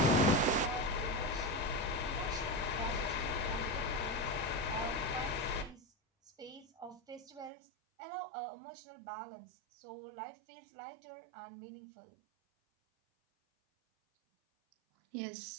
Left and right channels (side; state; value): left; drops out; at 7.5 s